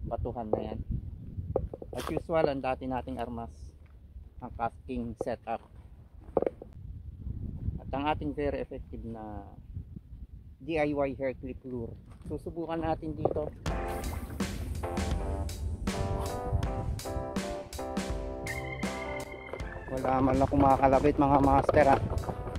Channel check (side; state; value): both; identical; correlation 1.00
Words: batuhan na yan. As usual, ang dati nating armas, ang casting setup. At ang ating very effective na DIY hair clip lure. Susubukan natin dito. Wala man lang kumakalabit mga master ha.